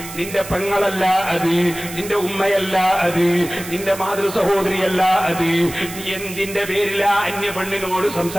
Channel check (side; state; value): right; noise; hiss, 12 dB below the sound